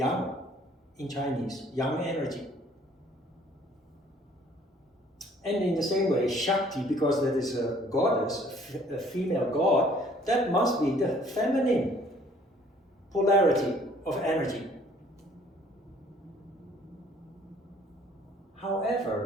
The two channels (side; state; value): both; normal; correlation 0.58